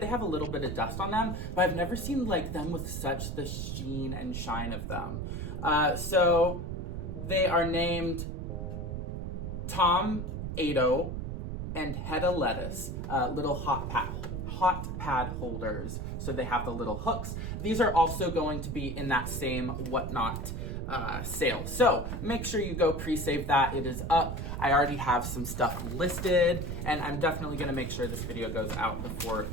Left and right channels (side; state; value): right; noise; rumble, 4 dB below the sound